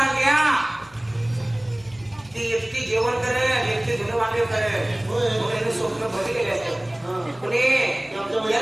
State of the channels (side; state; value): left; noise; hum, 29 dB below the sound